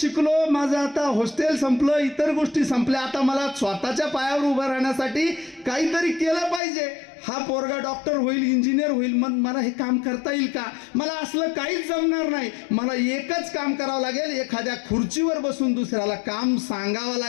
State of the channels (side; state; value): right; drops out; at 6.6 s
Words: माझं आता हॉस्टेल संपलं, इतर गोष्टी संपल्या, आता मला स्वतःच्या पायावर उभं राहण्यासाठी काहीतरी केलं पाहिजे. हा पोरगा डॉक्टर होईल, इंजिनियर होईल, मग मला हे काम करता येईल का? मला असलं काहीच जमणार नाही. मला एकच काम करावं लागेल, एखाद्या खुर्चीवर बसून दुसऱ्याला काम सांगावं